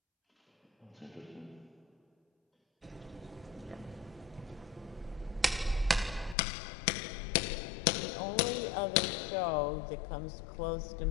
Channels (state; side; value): drops out; right; at 6.4 s